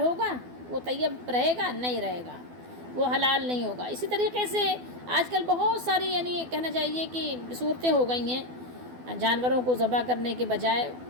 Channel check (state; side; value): late; left; 12 ms